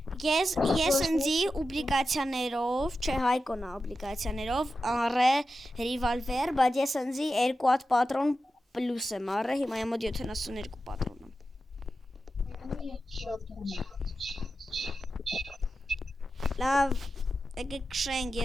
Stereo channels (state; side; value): normal; both; correlation 0.91